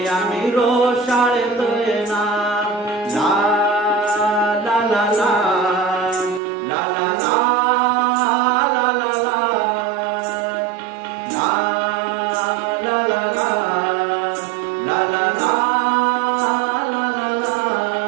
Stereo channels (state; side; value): drops out; left; at 6.4 s